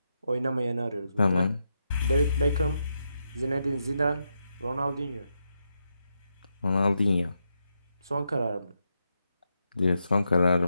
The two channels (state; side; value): inverted; both; correlation -0.84